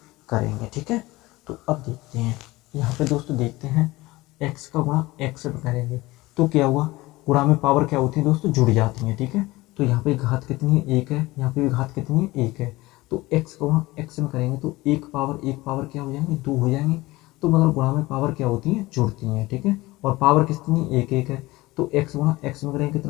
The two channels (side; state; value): right; quieter; 19.9 dB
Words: करेंगे, ठीक है। तो अब देखते हैं, यहाँ पे दोस्तों देखते हैं x का गुणा x में करेंगे तो क्या हुआ, गुणा में पावर क्या होती है दोस्तों, जुड़ जाती है, ठीक है। तो यहाँ पे घात कितनी है, 1 है। यहाँ पे भी घात कितनी है, 1 है। तो x का गुणा x में करेंगे तो एक पावर क्या हो जाएंगे, 2 हो जाएंगे। तो मतलब गुणा में पावर क्या होती है, जुड़ती हैं, ठीक है। और पावर कितनी, 1 है। तो x गुणा x में करेंगे